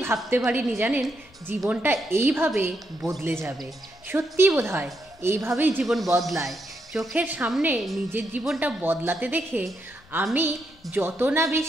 ভাবতে পারিনি, জানেন, জীবনটা এইভাবে বদলে যাবে। সত্যি বোধহয় এইভাবেই জীবন বদলায়। চোখের সামনে নিজের জীবনটা বদলাতে দেখে আমি যত না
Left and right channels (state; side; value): noise; left; rumble, 27 dB below the sound